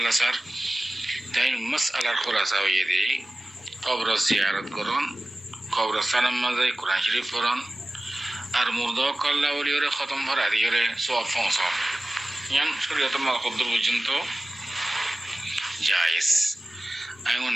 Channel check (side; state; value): both; normal; correlation 0.97